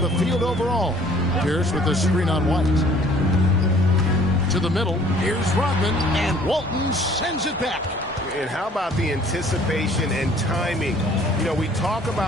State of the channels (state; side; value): normal; both; correlation 0.55